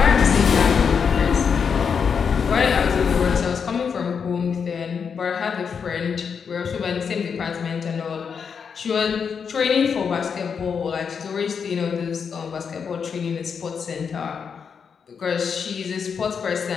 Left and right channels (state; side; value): quieter; right; 6.4 dB